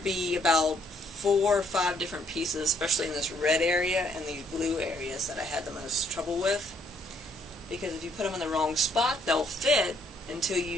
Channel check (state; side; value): normal; both; correlation 0.68